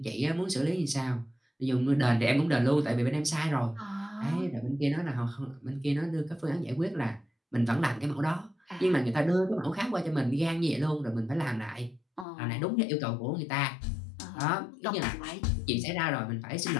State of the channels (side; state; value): right; drops out; at 12.2 s